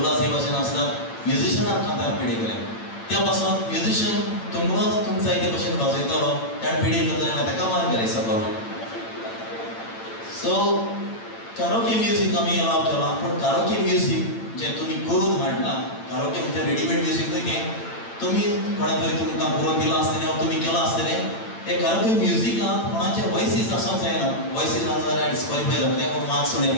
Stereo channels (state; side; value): late; right; 8.9 ms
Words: हे भाशेन आसतात म्युजिशियनान कांतार पेडे केलें. त्या पासून म्युजिशियन तुमकांच तुमकां जाय ते भशेन वाजयतलो ताणें पेडे करता जाल्यार ताका मार्क घाली सकलो. सो कारोके म्युजीक आमी अलाव केलां. पूण कारोके म्युजीक जें तुमी करून हाडला कारोके म्हणजे रेडीमेड म्युजीक न्हय तें तुमी कोणें तरी तुमकां करून दिलां आसतलें वा तुमी केलां आसतलें. हे कारोके म्युजिकांत कोणाचे वॉयसीस आसूंक जायना. वॉयसीस आसा जाल्यार डिस्क्वॉलिफाय जातले वा मार्क्स उणे